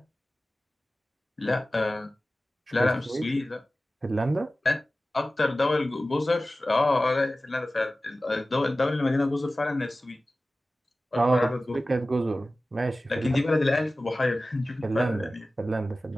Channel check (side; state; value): both; normal; correlation 0.96